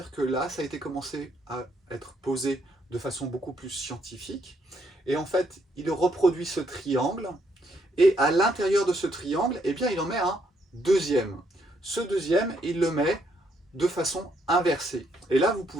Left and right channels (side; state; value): both; normal; correlation 0.73